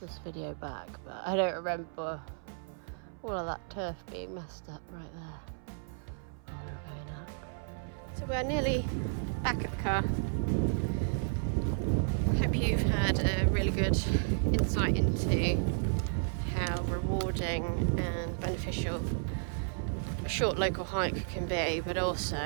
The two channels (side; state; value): left; silent; 56 dB below the other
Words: video back, but I don't remember all of that turf being messed up right there when we were going up. So we're nearly back at the car. Hope you've had a really good insight into how rewarding and beneficial a short local hike can be, but